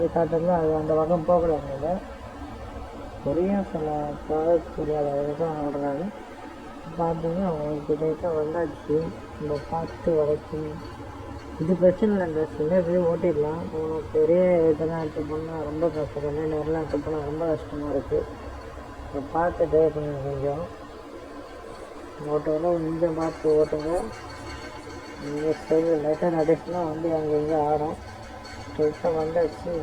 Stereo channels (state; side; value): identical; both; correlation 1.00